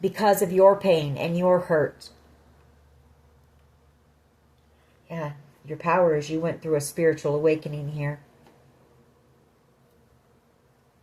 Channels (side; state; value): both; identical; correlation 1.00